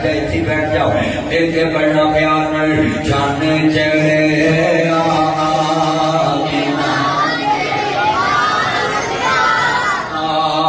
جائے اتنی بیٹھ جاؤ ایک پڑھنا پیار نال چاندے چڑھے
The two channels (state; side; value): identical; both; correlation 1.00